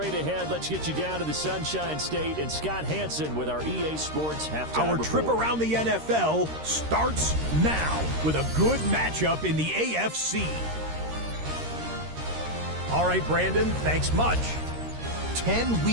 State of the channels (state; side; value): late; left; 13 ms